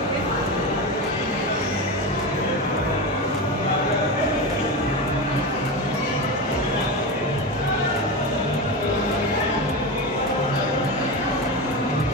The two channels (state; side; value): normal; both; correlation 0.20